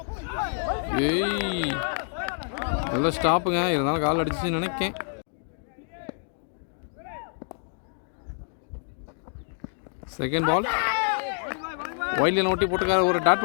ஏய் நல்ல ஸ்டாப்புங்க. இருந்தாலும் கால் அடிச்சுன்னு நினைக்கேன். செகண்ட் பால் வைல்டில் ஓட்டி போட்டுக்கார. ஒரு dot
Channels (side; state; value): right; silent; 59 dB below the other